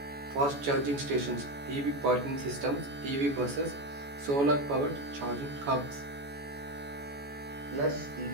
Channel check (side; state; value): left; late; 14 ms